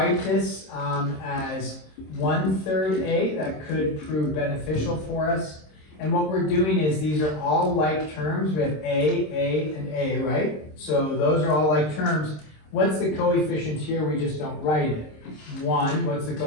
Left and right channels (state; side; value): late; right; 26 ms